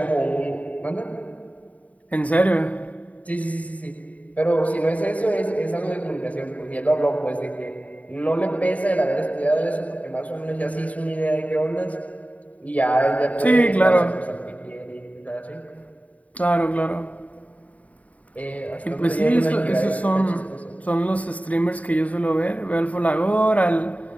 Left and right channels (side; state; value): right; late; 0.069 ms